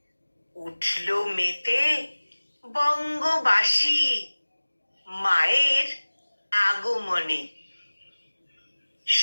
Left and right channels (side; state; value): both; inverted; correlation -1.00